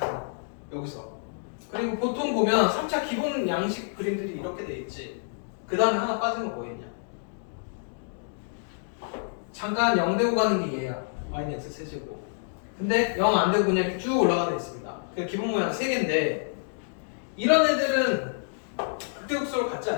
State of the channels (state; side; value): silent; right; digital silence